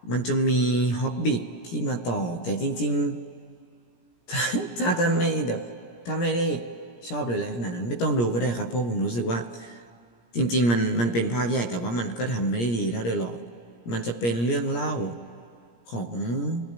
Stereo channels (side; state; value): right; late; 17 ms